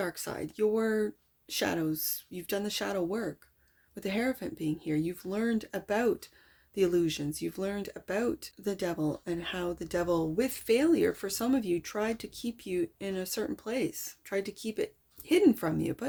side, your shadows. You've done the shadow work. With the Hierophant being here, you've learned about the illusions. You've learned about the devil, and how the devil, with failure for some of you, tried to keep you in a certain place, tried to keep it hidden from you.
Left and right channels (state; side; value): identical; both; correlation 1.00